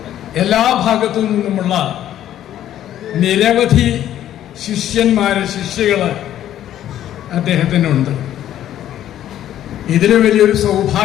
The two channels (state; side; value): quieter; right; 11.7 dB